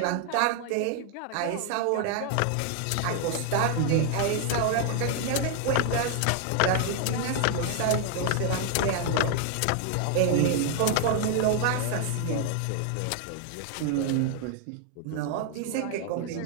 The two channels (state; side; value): different; both; correlation 0.00